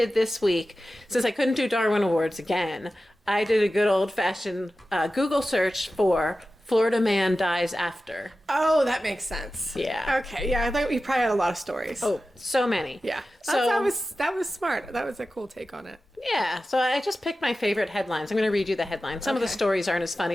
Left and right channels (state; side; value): normal; both; correlation 0.94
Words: this week, since I couldn't do Darwin Awards again, I did a good old-fashioned Google search for Florida man dies after. Oh, that makes sense. Yeah. Okay. Yeah, I thought you probably had a lot of stories. Oh, so many. Yeah. So That was smart. That was a cool take on it. yeah, so I just picked my favorite headlines. I'm going to read you the headlines. Some of the Okay. stories aren't as